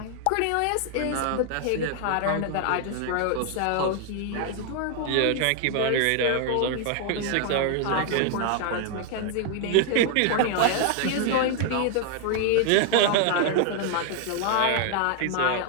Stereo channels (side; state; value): both; different; correlation 0.00